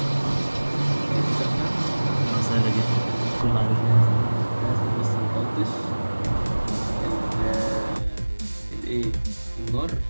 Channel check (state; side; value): inverted; both; correlation -1.00